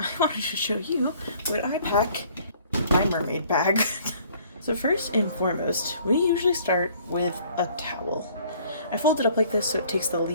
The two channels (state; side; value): inverted; both; correlation -0.57